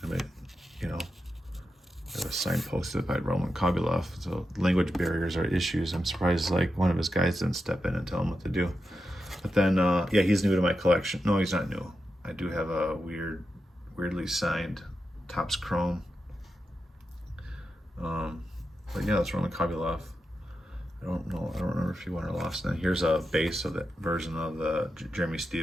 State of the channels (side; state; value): both; normal; correlation 0.88